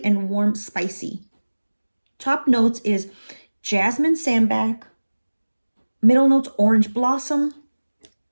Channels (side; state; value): both; inverted; correlation -1.00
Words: and warm spicy. Top notes is jasmine sambac. Middle notes, orange blossom.